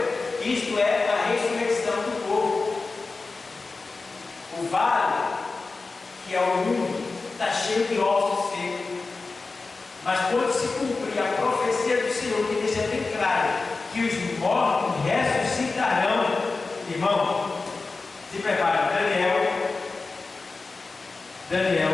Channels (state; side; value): quieter; right; 3.9 dB